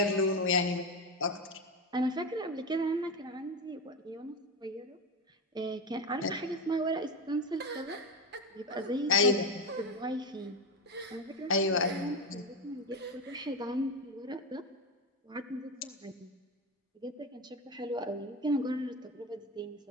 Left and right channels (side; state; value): both; normal; correlation 0.16